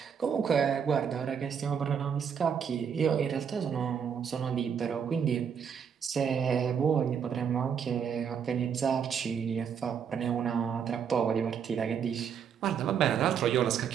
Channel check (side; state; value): left; quieter; 7.4 dB